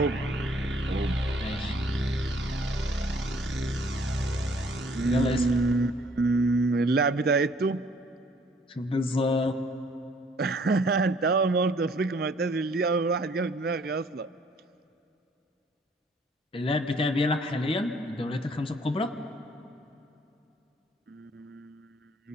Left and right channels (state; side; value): normal; both; correlation 0.60